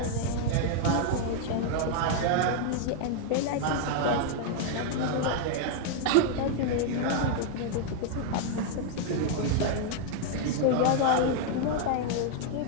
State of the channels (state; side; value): different; both; correlation 0.00